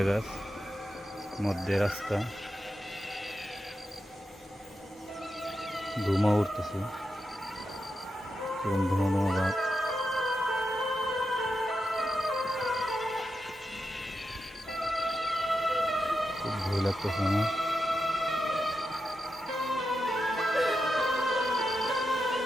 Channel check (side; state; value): both; normal; correlation 0.87